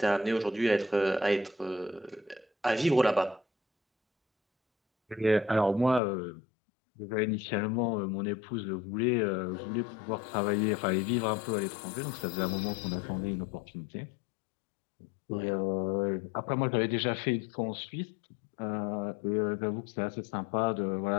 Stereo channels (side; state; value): right; drops out; at 6.0 s